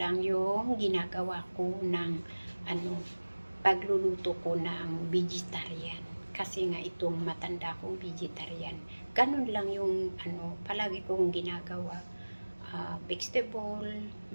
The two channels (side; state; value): both; inverted; correlation -1.00